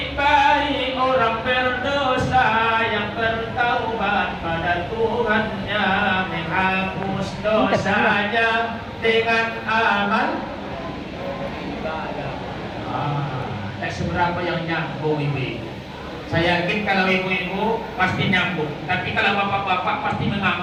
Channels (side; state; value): both; identical; correlation 1.00